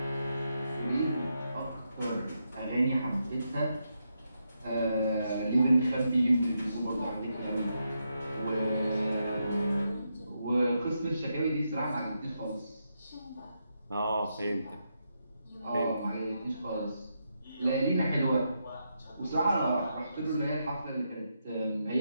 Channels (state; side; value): inverted; both; correlation -0.83